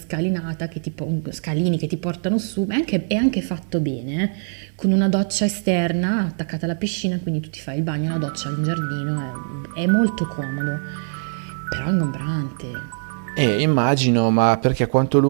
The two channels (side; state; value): left; silent; digital silence